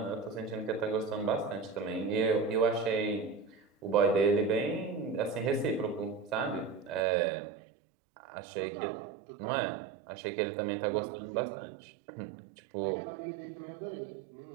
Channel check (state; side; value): drops out; left; at 7.0 s